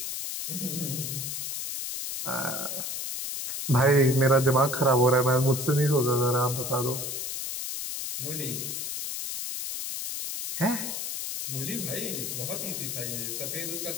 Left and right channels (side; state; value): left; noise; hiss, 4 dB below the sound